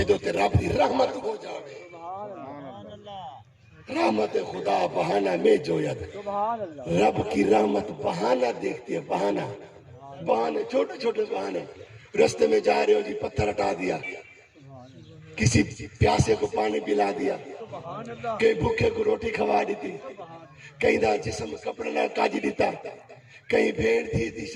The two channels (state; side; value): identical; both; correlation 1.00